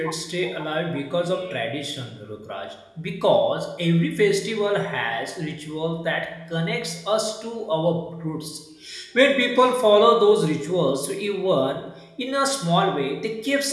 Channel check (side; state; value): both; identical; correlation 1.00